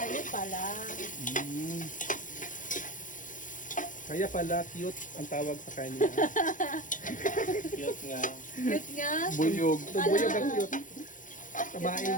yun pala. Kaya pala cute ang tawag sa kanya. cute nga. Cute nga. Buyog. Buyog ang cute. Tamain.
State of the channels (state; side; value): late; right; 0.38 ms